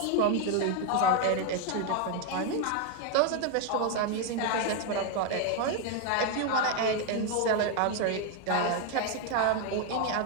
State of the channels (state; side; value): different; both; correlation 0.01